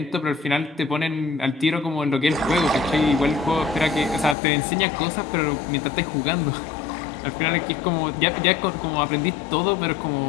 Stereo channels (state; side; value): drops out; right; at 4.4 s